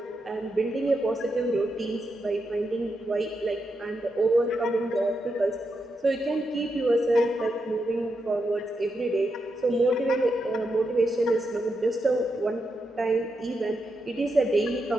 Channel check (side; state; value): both; normal; correlation 0.84